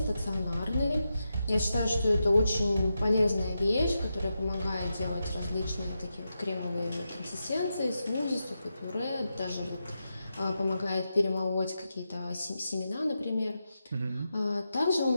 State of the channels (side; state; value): both; inverted; correlation -0.88